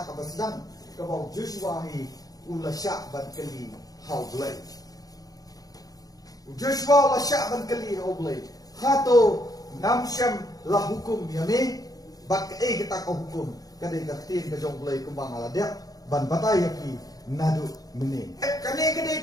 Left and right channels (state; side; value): late; right; 0.18 ms